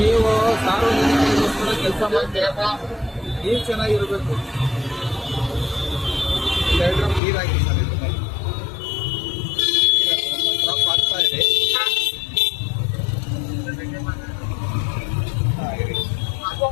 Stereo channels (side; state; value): right; drops out; at 7.2 s